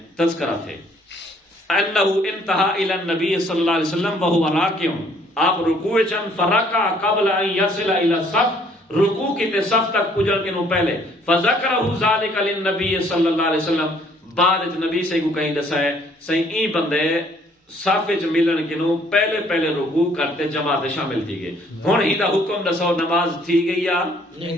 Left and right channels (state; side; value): normal; both; correlation 0.62